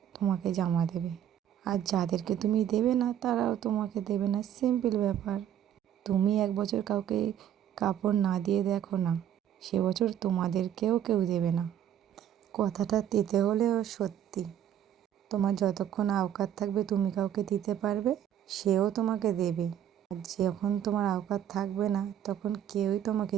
তোমাকে জামা দেবে, আর যাদেরকে তুমি দেবে না তারাও তোমাকে দেবে না। সিম্পল ব্যাপার। তুমি এক বছর কাউকে কাপড় না দিয়ে দেখো না, সে বছর তোমাদেরকেও কেউ দেবে না। কথাটা তেতে হলেও সত্যি। তোমার যতক্ষণ আওকাত থাকবে তুমি কাউকে দিতে পারবে, সেও তোমাকে দেবে। আর যখন তোমার আওকাত থাকবে না, তখন কেউই তোমাকে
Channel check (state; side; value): quieter; left; 10.3 dB